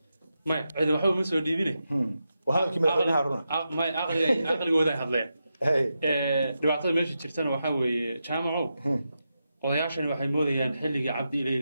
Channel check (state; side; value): inverted; both; correlation -0.88